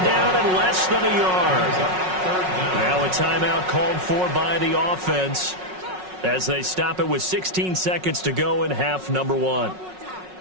down and less than a yard. Now a timeout called for by the offense as they stop it with 16 seconds to go in half number 1.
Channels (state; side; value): late; left; 5.4 ms